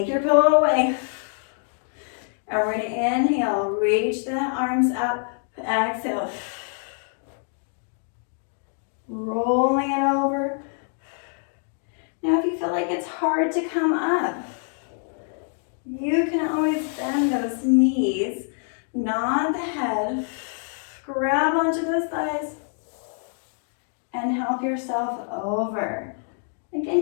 your pillow away. And we're going to inhale, reach the arms up, exhale. Rolling it over. Now if you feel like it's hard to come up, you can always bend those knees, nod the head, grab onto those thighs, and help yourself over.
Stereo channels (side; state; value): right; silent; 56 dB below the other